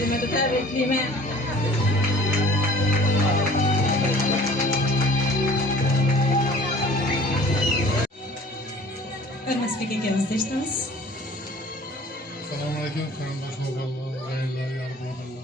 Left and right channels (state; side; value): normal; both; correlation 0.49